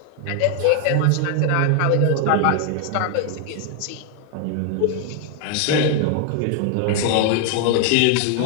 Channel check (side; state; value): both; different; correlation 0.00